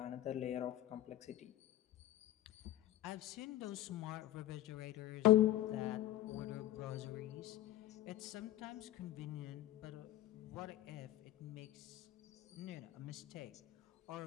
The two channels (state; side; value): quieter; right; 14.0 dB